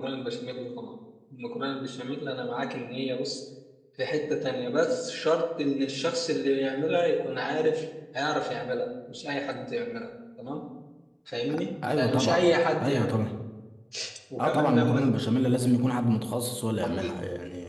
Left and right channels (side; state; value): both; identical; correlation 1.00